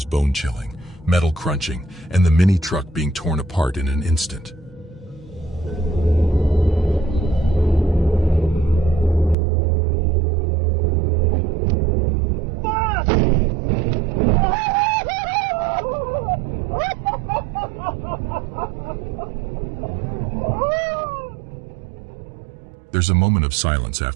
bone-chilling, metal crunching, and the mini-truck being torn apart in an instant. There's a moment of silence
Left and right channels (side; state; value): left; drops out; at 9.3 s